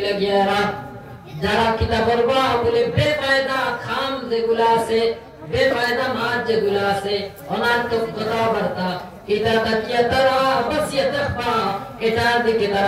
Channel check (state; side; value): identical; both; correlation 1.00